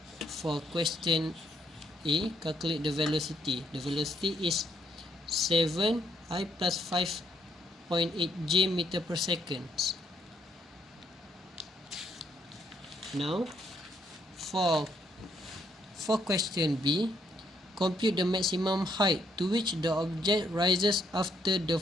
question A. Calculate the velocity. The velocity is 7 I plus 5.8 G meter per second. Now for question B, compute the maximum height to which the object rises after the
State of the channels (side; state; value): both; normal; correlation 0.71